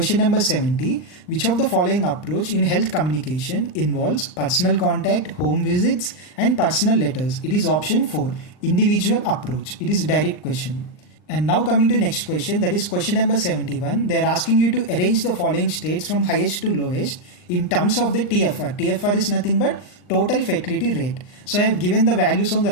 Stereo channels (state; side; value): late; right; 39 ms